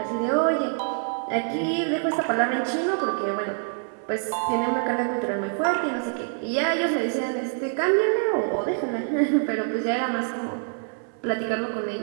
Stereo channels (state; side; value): silent; left; 56 dB below the other